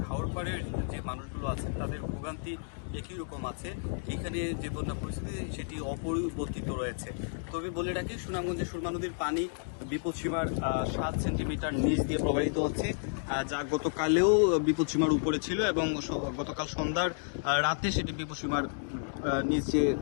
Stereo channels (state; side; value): silent; right; digital silence